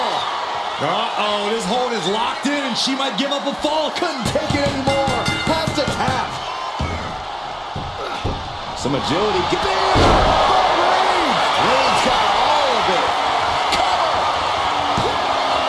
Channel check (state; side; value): identical; both; correlation 1.00